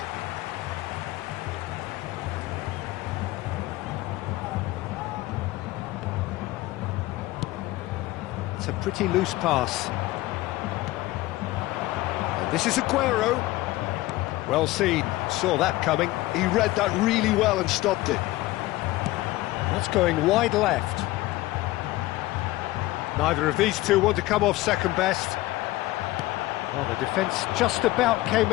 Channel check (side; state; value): right; quieter; 18.1 dB